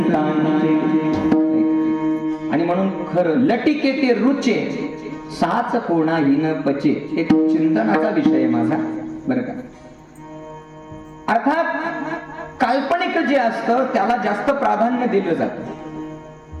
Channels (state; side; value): identical; both; correlation 1.00